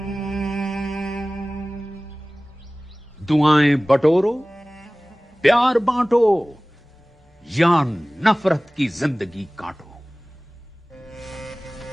बटोरो, प्यार बांटो या नफरत की जिंदगी काटो।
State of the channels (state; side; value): normal; both; correlation 0.98